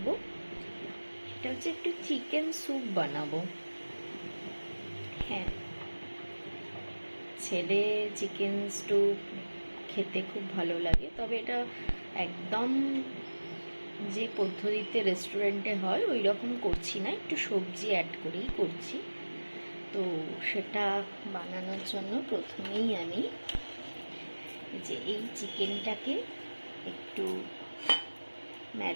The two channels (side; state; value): both; inverted; correlation -1.00